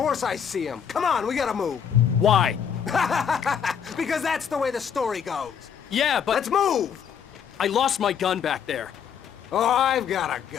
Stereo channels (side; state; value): right; quieter; 7.8 dB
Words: I see them. Come on, we gotta move. Why? Because that's the way the story goes. Yeah, but... Let's move! I lost my gun back there. Oh, I've got a